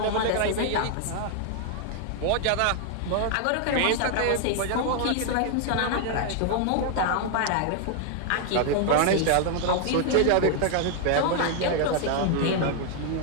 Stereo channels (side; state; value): both; different; correlation 0.00